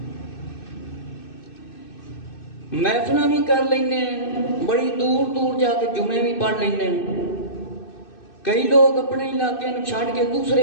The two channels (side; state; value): right; late; 2.6 ms